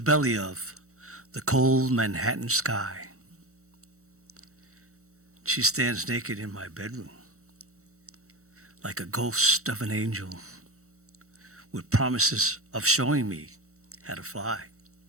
belly of the cold Manhattan sky. She stands naked in my bedroom, like a ghost of an angel, with promises of showing me how to fly.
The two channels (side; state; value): left; late; 0.64 ms